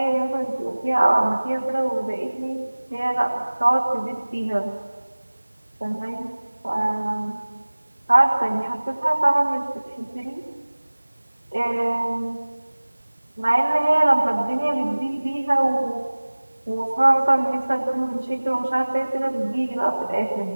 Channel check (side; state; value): both; inverted; correlation -1.00